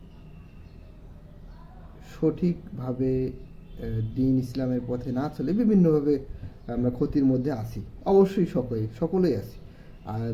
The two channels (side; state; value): both; identical; correlation 1.00